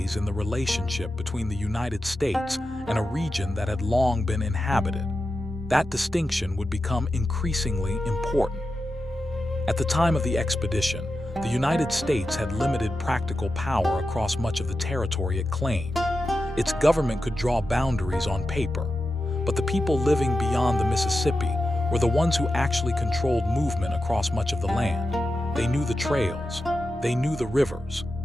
in the relationship between the United States and a region that had long been inhabited. That distinction would become increasingly important. At the time of the expedition, the United States had limited practical power across much of the territory it claimed. Its government could draw boundaries on paper, but the people living beyond the Mississippi were the ones who actually controlled movement across much of the land. They knew the trails, they knew the rivers,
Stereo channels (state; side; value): normal; both; correlation 0.91